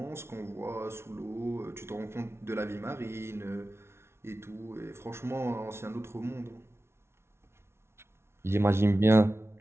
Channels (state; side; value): late; left; 0.12 ms